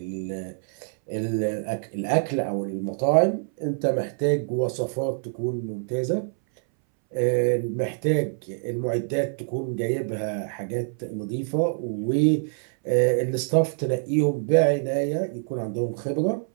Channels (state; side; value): silent; left; 61 dB below the other